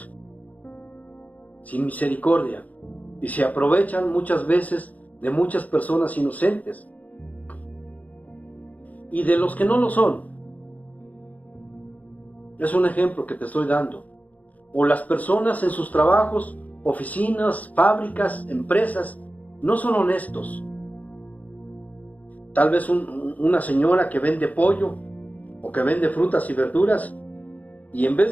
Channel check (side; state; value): right; late; 0.076 ms